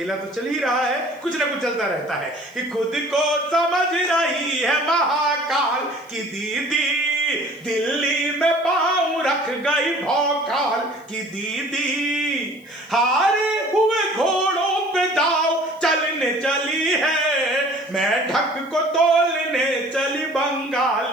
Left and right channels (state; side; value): noise; left; hiss, 30 dB below the sound